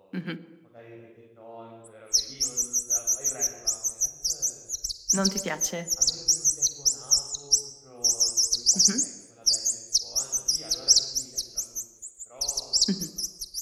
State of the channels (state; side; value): identical; both; correlation 1.00